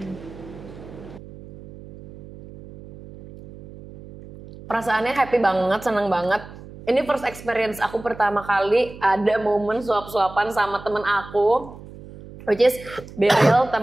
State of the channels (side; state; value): right; noise; hum, 17 dB below the sound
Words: Perasaannya happy banget, senang banget. Ini first experience aku pertama kali ada momen suap-suapan sama temen aku. Which is Berel,